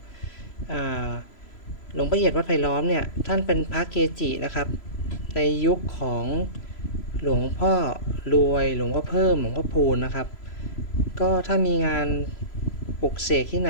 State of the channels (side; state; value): right; late; 3.0 ms